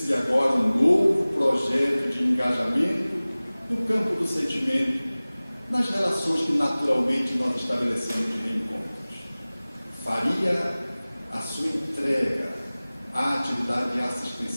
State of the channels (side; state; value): both; inverted; correlation -0.99